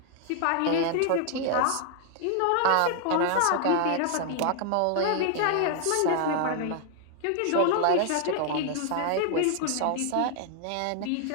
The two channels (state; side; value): different; both; correlation 0.00